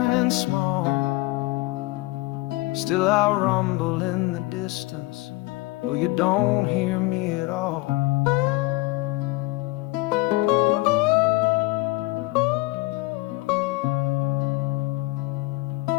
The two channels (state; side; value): quieter; right; 20.7 dB